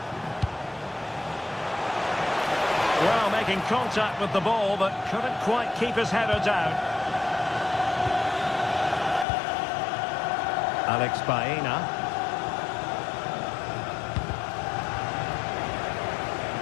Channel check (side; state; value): right; drops out; at 9.2 s